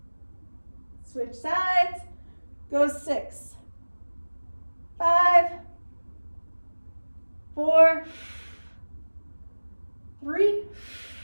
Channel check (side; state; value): both; inverted; correlation -1.00